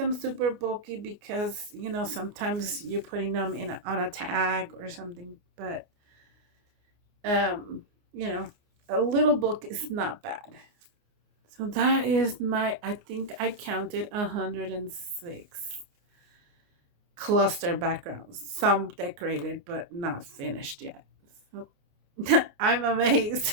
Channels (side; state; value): left; late; 29 ms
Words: super bulky because, sometimes you're putting them on a tag or something. But, um, you know, a little bulk is not bad. So that is my, I think I counted 106 cluster backgrounds. Some decorated, but not finished yet. So I'm